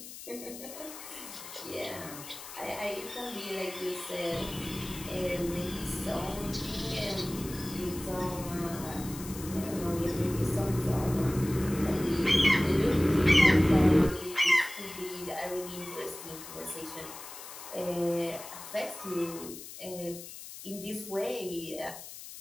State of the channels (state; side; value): noise; left; hiss, 13 dB below the sound